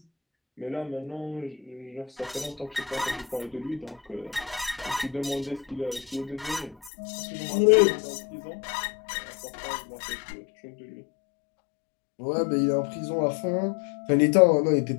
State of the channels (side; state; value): right; drops out; at 6.9 s